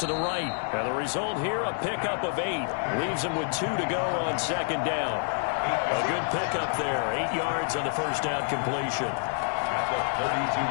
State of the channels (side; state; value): right; silent; 59 dB below the other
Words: the right. And the result here, a pickup of 8. Leaves them with 2 to go on 2nd down. A good pickup there. 8 yards on the first down completion. At the